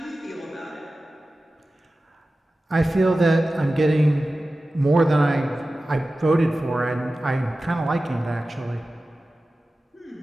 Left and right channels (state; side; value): normal; both; correlation 0.95